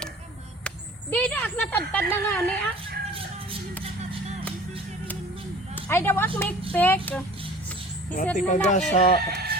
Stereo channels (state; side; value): normal; both; correlation 0.45